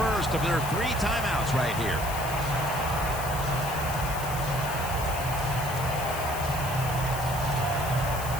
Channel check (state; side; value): noise; left; hiss, 10 dB below the sound